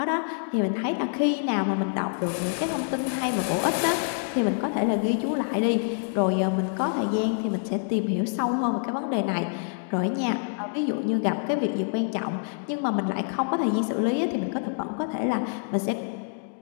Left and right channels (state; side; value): silent; right; digital silence